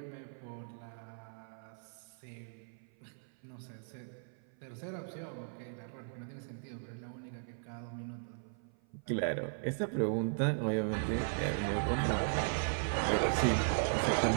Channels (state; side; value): silent; left; 53 dB below the other